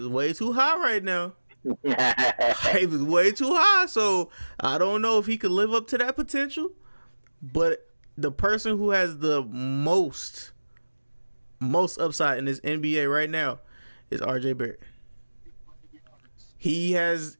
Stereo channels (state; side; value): inverted; both; correlation -1.00